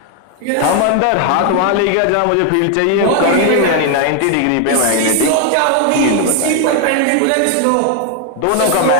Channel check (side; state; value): both; different; correlation 0.01